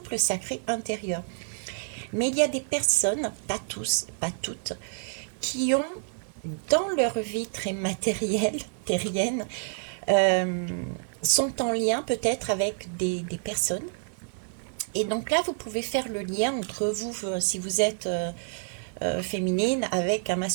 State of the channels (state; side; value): silent; left; digital silence